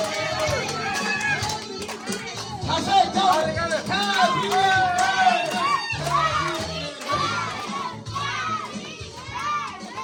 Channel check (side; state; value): both; identical; correlation 1.00